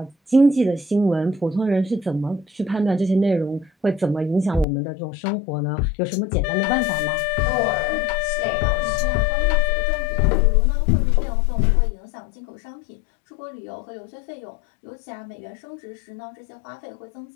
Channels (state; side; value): drops out; right; at 4.7 s